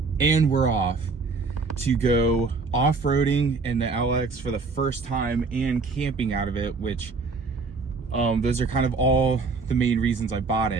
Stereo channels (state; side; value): quieter; left; 4.2 dB